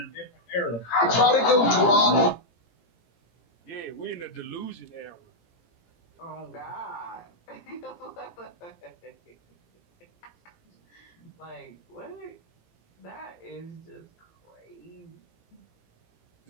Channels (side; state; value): right; late; 17 ms